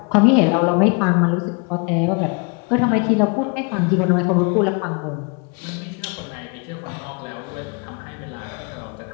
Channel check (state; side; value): quieter; right; 33.7 dB